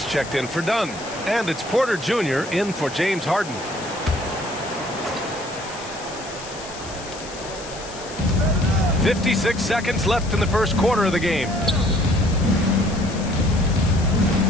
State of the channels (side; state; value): left; noise; hiss, 14 dB below the sound